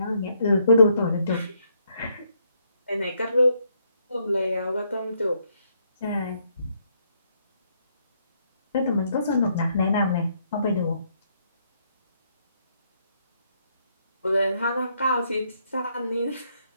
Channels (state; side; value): inverted; both; correlation -0.73